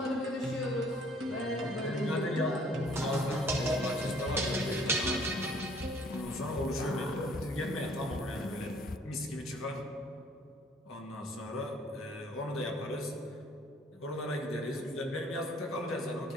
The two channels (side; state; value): both; normal; correlation 0.58